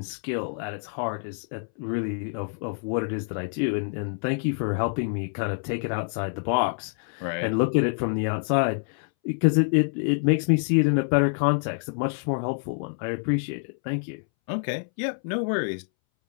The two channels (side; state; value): right; silent; 60 dB below the other